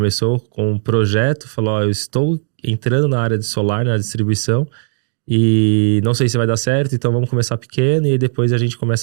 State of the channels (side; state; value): left; silent; digital silence